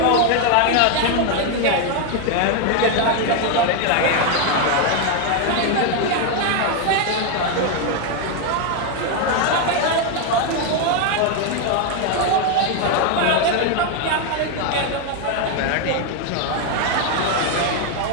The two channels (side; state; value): both; different; correlation 0.01